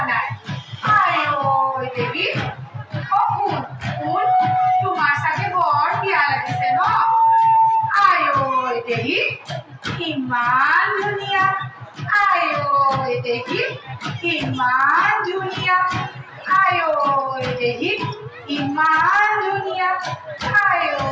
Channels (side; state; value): both; identical; correlation 1.00